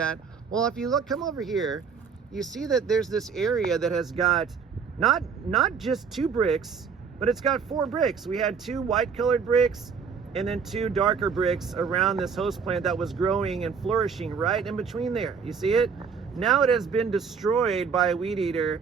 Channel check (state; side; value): quieter; left; 6.1 dB